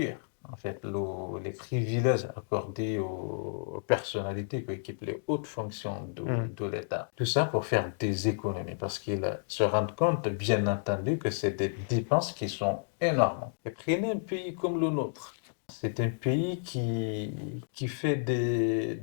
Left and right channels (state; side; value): silent; right; digital silence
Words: en fait les privilèges accordés aux personnalités qui occupent les hautes fonctions de l'État. Tout ça pour faire des économies parce qu'ils se rendent compte, bien entendu, que c'est des dépenses qui sont énormes. Et prenez un pays comme le nôtre. C'est un pays qui fait